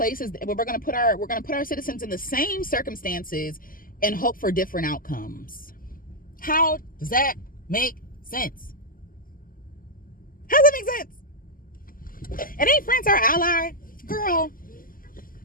We're going to put our citizens in the same circumstances and hope for different outcomes. How does that make sense? How does that make sense? And ain't France our ally? Girl,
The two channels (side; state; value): right; late; 0.41 ms